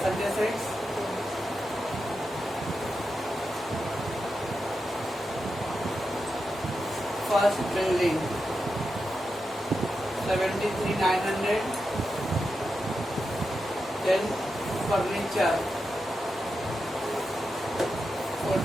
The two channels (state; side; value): normal; both; correlation 0.88